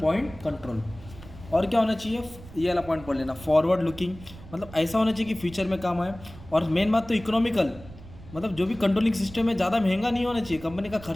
पॉइंट कंट्रोल। और क्या होना चाहिए? ये वाला पॉइंट पढ़ लेना, फॉरवर्ड लुकिंग। मतलब ऐसा होना चाहिए कि फ्यूचर में काम आए। और मेन बात तो इकोनॉमिकल, मतलब जो भी कंट्रोलिंग सिस्टम है ज़्यादा महंगा नहीं होना चाहिए, कंपनी का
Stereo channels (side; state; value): right; noise; rumble, 17 dB below the sound